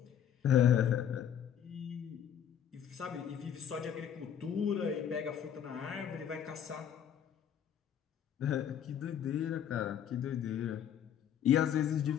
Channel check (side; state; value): right; quieter; 9.2 dB